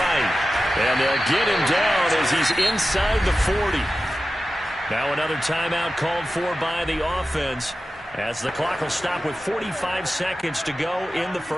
And they'll get him down as he's inside the 40. Now another timeout called for by the offense as the clock will stop with 45 seconds to go in the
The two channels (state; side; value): normal; both; correlation 0.93